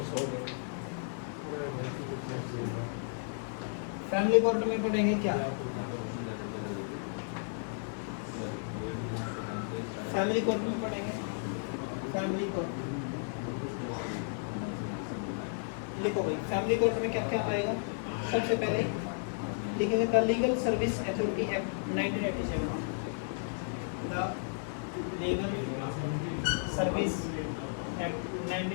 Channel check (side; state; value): right; silent; 55 dB below the other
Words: हो गए, फैमिली कोर्ट में पढ़ेंगे क्या, फैमिली कोर्ट में पढ़ेंगे फैमिली कोर्ट। लिखो भाई फैमिली कोर्ट में क्या क्या आएगा। सबसे पहले लिखेंगे the legal service authority act 1987, the legal service act